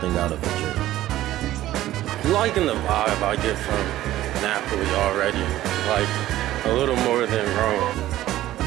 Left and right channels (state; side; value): quieter; left; 14.5 dB